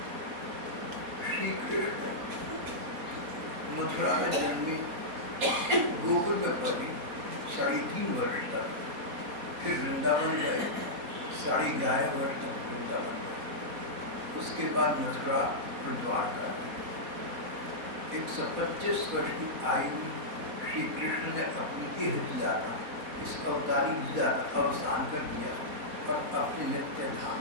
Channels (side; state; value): left; late; 4.2 ms